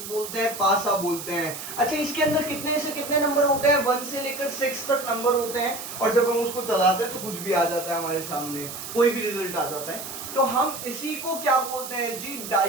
बोलते हैं, पासा बोलते हैं। अच्छा, इसके अंदर कितने से कितने नंबर होते हैं? 1 से लेकर 6 तक नंबर होते हैं, और जब हम उसको चलाते हैं तो कुछ भी आ जाता है हमारे सामने, कोई भी रिजल्ट आ जाता है। तो हम इसी को क्या बोलते हैं जी?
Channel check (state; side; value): noise; right; hiss, 9 dB below the sound